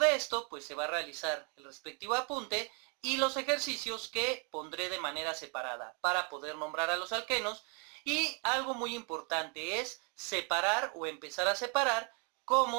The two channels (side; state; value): left; quieter; 36.1 dB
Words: esto? Pues se va a realizar el respectivo apunte y los ejercicios que pondré de manera separada para poder nombrar a los alquenos. Y algo muy importante es separar o empezar a separar